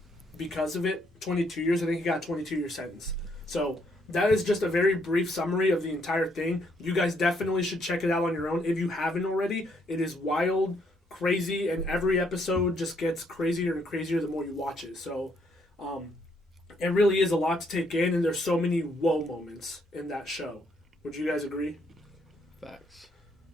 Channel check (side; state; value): both; normal; correlation 0.72